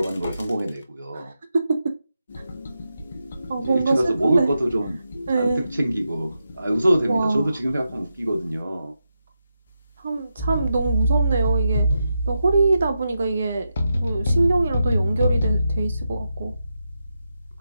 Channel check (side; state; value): both; inverted; correlation -0.87